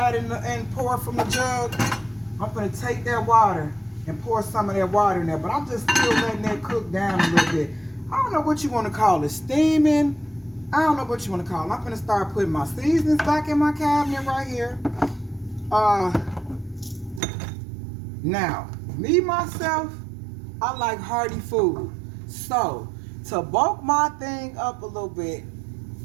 and poured from the jug? I'm going to take that water and pour some of that water in there, but I'm just still letting that cook down a little bit. I don't know what you want to call it, steaming. I don't know what you want to call it. I'm going to start putting my seasonings back in my cabinet right here. Now, me, myself, I like hearty food. So, to bulk my thing up a little bit,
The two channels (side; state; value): left; drops out; at 17.2 s